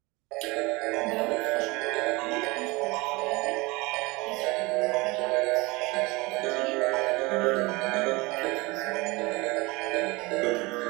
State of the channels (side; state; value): left; quieter; 24.0 dB